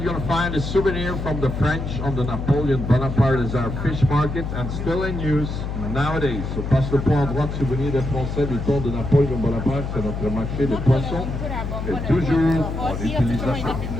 you're going to find a souvenir from the French on the Napoleon Bonaparte as our fish market and still in use nowadays. So passe le point à droite, souvenir des Français du temps de Napoleon Bonaparte, c'est notre marché de poissons et toujours en utilisation.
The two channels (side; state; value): left; noise; hum, 4 dB below the sound